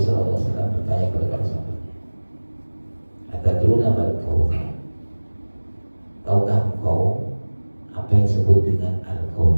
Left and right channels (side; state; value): both; inverted; correlation -1.00